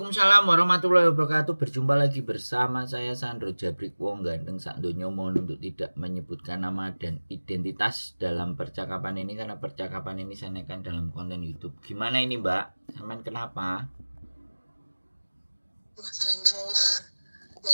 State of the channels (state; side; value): inverted; both; correlation -1.00